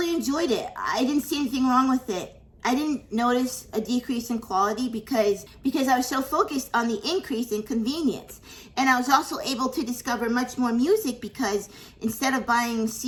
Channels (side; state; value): both; identical; correlation 1.00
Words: enjoyed it. I didn't see anything wrong with it. I didn't notice a decrease in quality because I was so focused on the increase in convenience. And I was also able to discover much more music because instead of buying